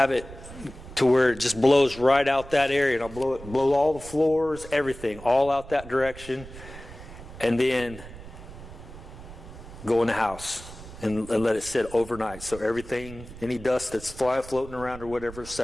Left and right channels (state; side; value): noise; right; rumble, 15 dB below the sound